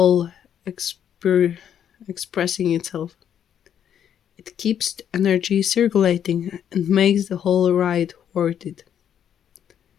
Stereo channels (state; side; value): quieter; right; 9.2 dB